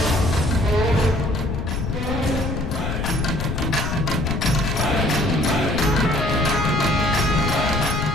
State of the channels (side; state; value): left; noise; rumble, 3 dB below the sound